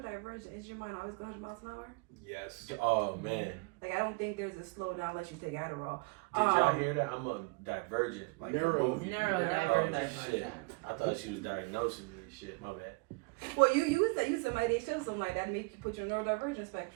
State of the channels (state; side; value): quieter; left; 28.4 dB